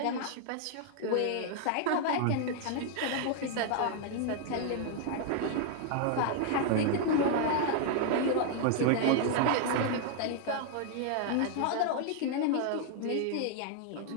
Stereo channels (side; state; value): both; different; correlation 0.00